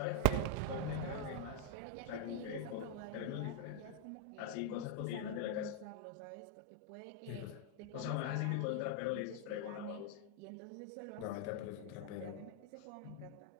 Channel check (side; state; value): both; different; correlation 0.00